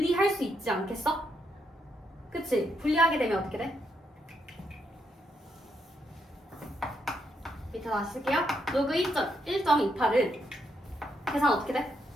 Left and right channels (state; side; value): normal; both; correlation 0.78